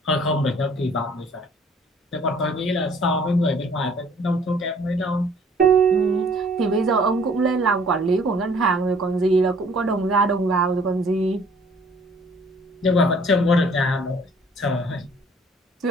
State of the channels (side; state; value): both; normal; correlation 0.57